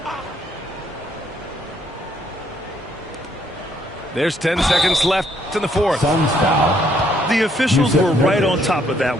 There's 10 seconds left in the fourth. Suns foul. The officials were right on top of that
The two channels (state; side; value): normal; both; correlation 0.69